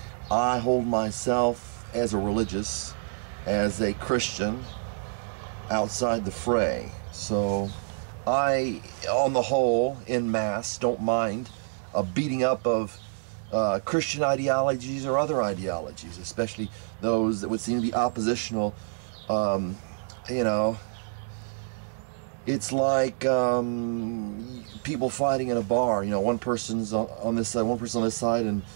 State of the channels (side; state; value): left; silent; digital silence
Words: I hold myself as a religious, as a Christian, outside the fray. So I, on the whole, en masse, don't mind a beating up of Christian ideologies or other ideologies, especially those that would seem to be oppositional. You know, it's like people fighting in a bar. You know, one person's on this side, one person on this side, and